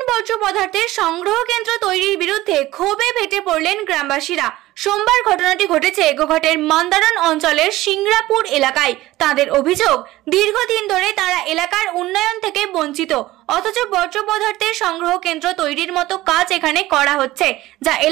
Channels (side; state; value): left; quieter; 17.0 dB